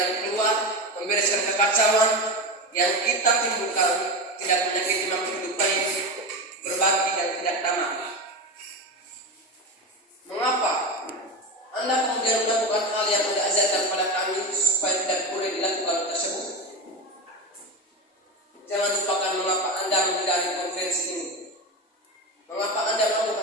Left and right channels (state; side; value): normal; both; correlation 0.21